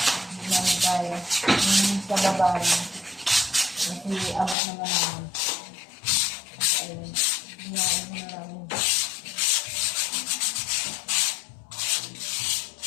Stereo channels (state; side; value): drops out; right; at 4.5 s